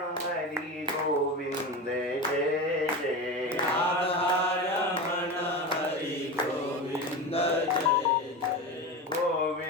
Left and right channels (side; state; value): both; normal; correlation 0.24